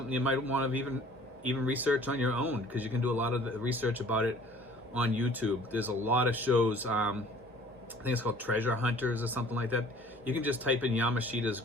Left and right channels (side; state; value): both; normal; correlation 0.52